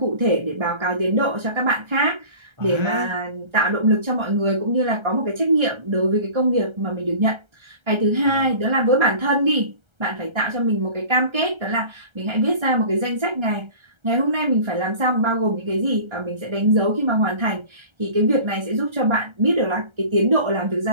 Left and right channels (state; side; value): late; left; 1.3 ms